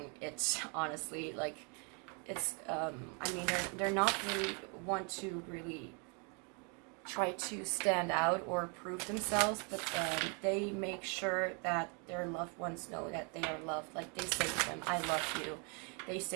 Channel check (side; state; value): left; quieter; 35.8 dB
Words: it, honestly. Like, it's, they're not really want to really try to stand out or prove themselves, but they make sure that their loved ones know that they are loved. Like, they say to them, I love you. They